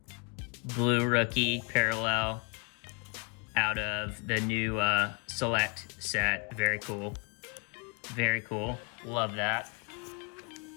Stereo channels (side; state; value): right; quieter; 31.8 dB